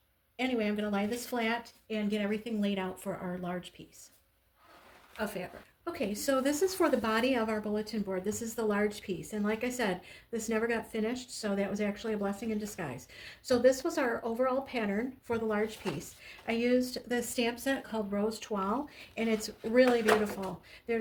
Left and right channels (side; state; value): both; identical; correlation 1.00